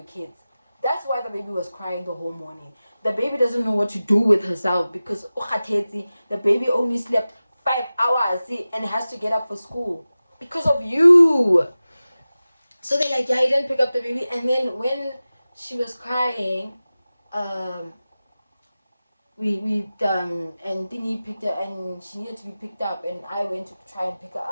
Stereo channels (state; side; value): inverted; both; correlation -0.96